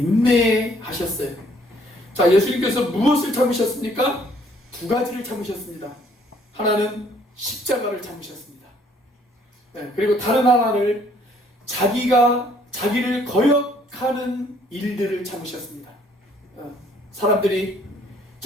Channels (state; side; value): normal; both; correlation 0.63